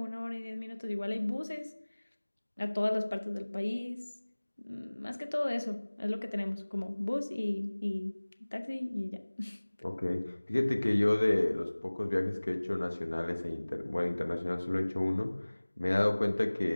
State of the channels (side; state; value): both; inverted; correlation -1.00